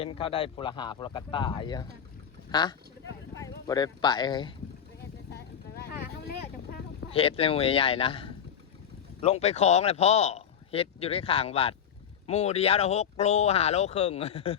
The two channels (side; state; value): right; quieter; 8.3 dB